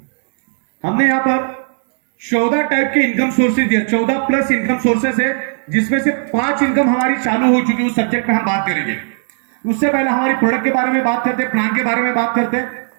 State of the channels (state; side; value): silent; left; digital silence